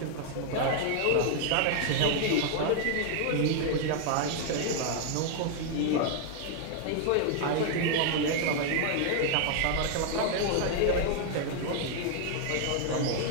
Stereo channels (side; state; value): both; different; correlation 0.00